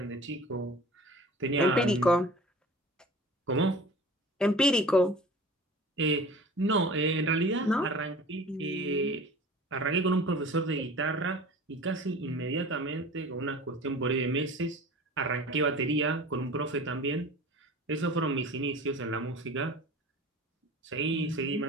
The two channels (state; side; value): normal; both; correlation 0.41